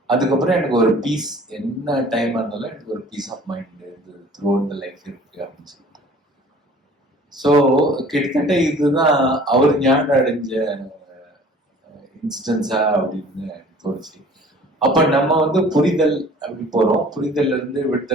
அதுக்கப்புறம் எனக்கு ஒரு பீஸ், என்ன டைம் இருந்தாலும் எனக்கு ஒரு peace of mind throughout the life இருக்கு அப்படின்னு சொல்லிட்டு. ஸோ கிட்டத்தட்ட இதுதான் அவர் ஞானம் அடைஞ்ச இன்ஸ்டன்ஸா அப்படின்னு தோணுச்சு. அப்ப நம்ம வந்து புரிதல் அப்படி போறோம், புரிதல்ல இருந்து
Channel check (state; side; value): normal; both; correlation 0.49